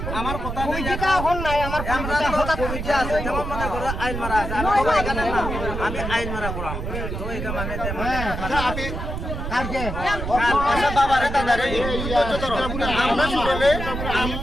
আমার কথা নাই আইন মারা আছে আমি আইন মারা করাম তো এটা মানে কালকে বাবা রে দাদা রে আমরা শুনলে আমি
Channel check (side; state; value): right; noise; rumble, 5 dB below the sound